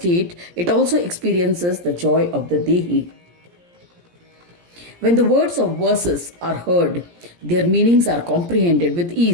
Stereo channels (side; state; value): left; late; 17 ms